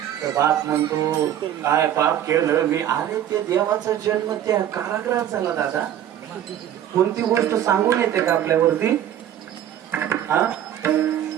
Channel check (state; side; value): quieter; left; 11.0 dB